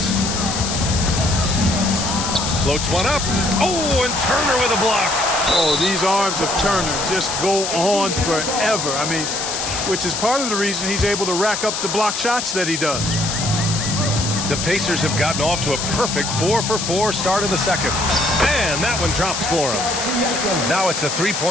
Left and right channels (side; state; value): left; noise; hiss, 3 dB below the sound